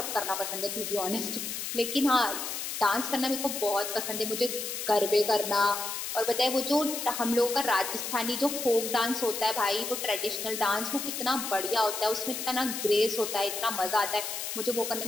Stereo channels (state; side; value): noise; left; hiss, 4 dB below the sound